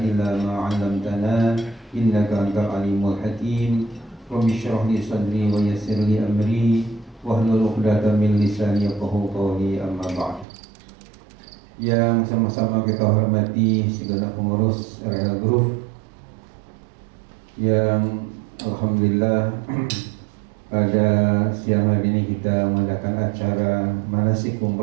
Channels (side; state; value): left; drops out; at 10.5 s